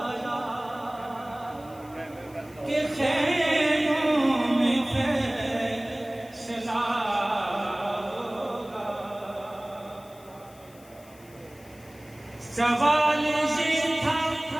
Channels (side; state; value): left; noise; hiss, 25 dB below the sound